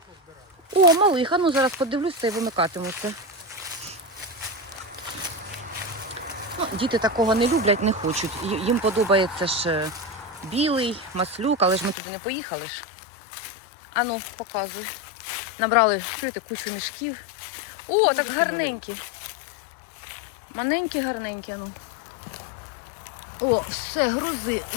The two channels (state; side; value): drops out; right; at 12.0 s